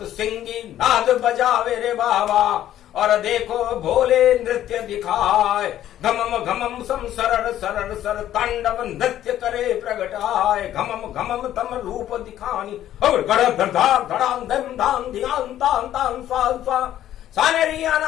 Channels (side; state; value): right; quieter; 12.1 dB